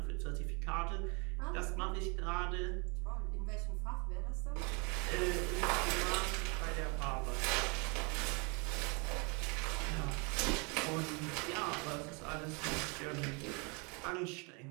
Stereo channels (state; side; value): quieter; left; 31.2 dB